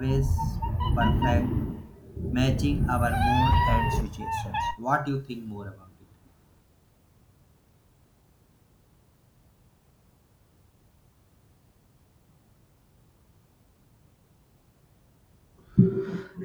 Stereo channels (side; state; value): both; identical; correlation 1.00